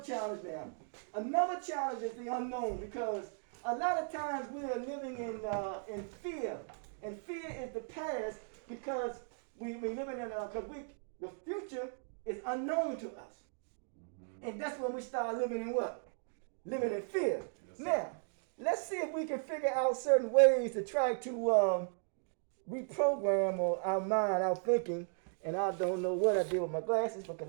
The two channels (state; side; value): silent; left; 53 dB below the other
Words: challenge now. Another challenge is the unknown because a lot of times we are living in fear. And fear is the past because we living in the future is unknown to us. And that's when we start living in what? Living in fear. Yes, sir. Now, let's see if we can figure out certain ways to try to reprogram our mind, our thinking. And I don't know what I did with my glasses because